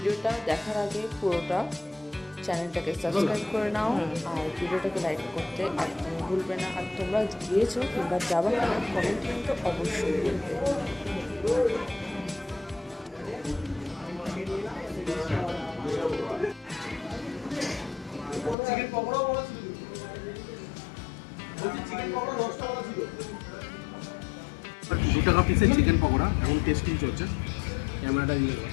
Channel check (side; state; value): right; drops out; at 18.6 s